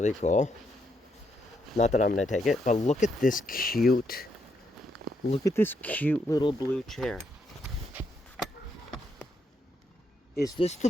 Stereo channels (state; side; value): normal; both; correlation 0.78